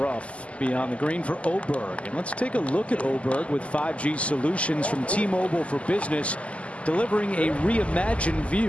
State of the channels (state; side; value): late; right; 0.062 ms